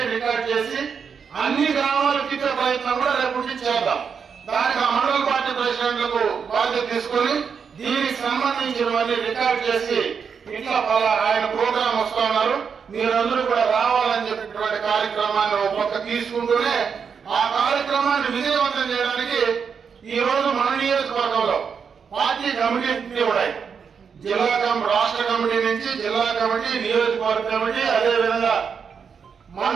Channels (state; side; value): quieter; left; 6.4 dB